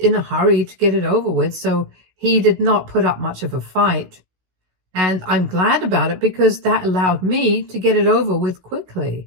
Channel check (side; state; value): left; late; 16 ms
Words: a hurry to get it over with, so he did not put up much of a fight. And I'm glad about it because that allowed me to get it over with